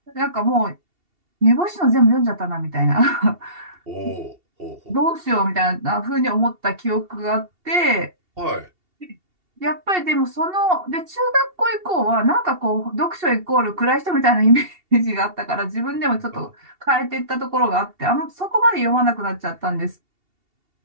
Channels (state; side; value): late; left; 2.7 ms